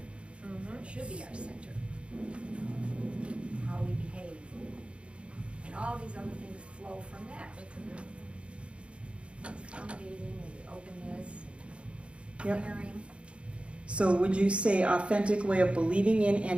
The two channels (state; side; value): late; left; 0.059 ms